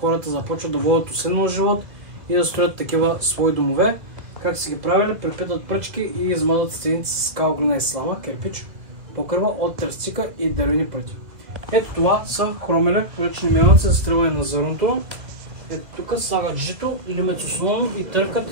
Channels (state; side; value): late; left; 1.9 ms